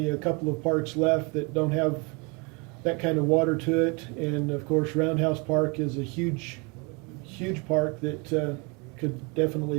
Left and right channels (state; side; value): quieter; left; 30.4 dB